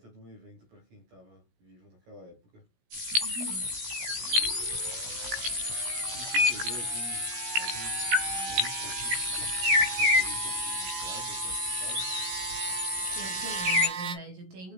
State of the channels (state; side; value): late; left; 17 ms